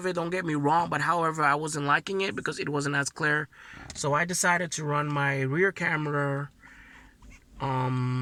it, don't get me wrong, but however, I wasn't liking it because it wasn't as clear. So I decided to run my rear camera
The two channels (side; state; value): both; identical; correlation 1.00